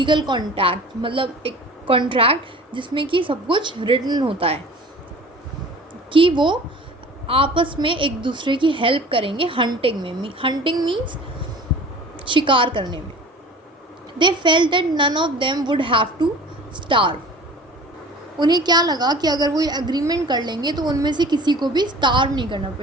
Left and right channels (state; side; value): normal; both; correlation 0.43